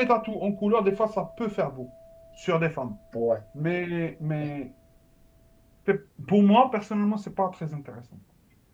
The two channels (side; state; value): both; identical; correlation 1.00